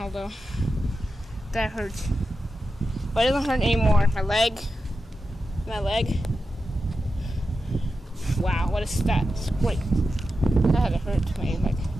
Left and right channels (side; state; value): both; normal; correlation 0.90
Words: that hurts. But it doesn't hurt anymore. My leg. Wow, what a stat. It's great. That had to hurt my leg.